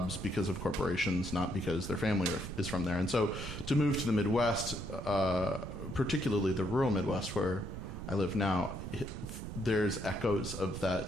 because of corporations, not because their family is from there. And so to move to the Midwest, particularly the rural Midwest where I live now, there's echoes of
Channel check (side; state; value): right; noise; rumble, 8 dB below the sound